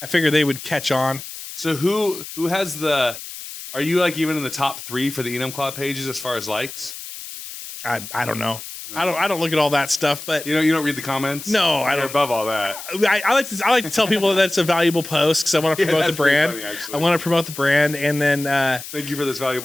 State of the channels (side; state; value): left; noise; hiss, 11 dB below the sound